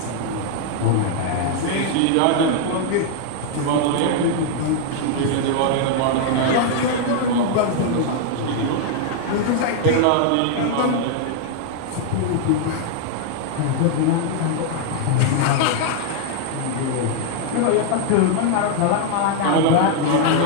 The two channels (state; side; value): different; both; correlation 0.00